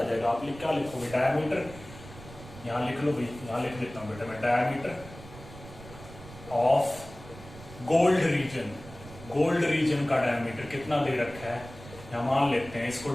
जाएगा। आप क्या लिखोगे, डायमीटर, यहाँ लिख लो भाई, यहाँ लिख देता हूँ बेटा मैं, diameter of gold region. Gold reason का डायमीटर कितना दे रखा है, यहाँ मान लेते हैं, इसको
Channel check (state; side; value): noise; right; rumble, 16 dB below the sound